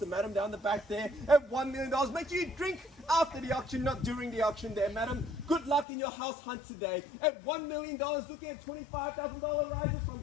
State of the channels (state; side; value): drops out; right; at 5.9 s